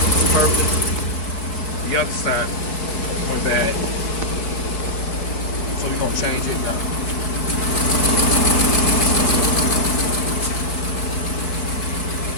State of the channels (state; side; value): late; right; 4.4 ms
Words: it's perfect. The other side went bad. So we're gonna change it now.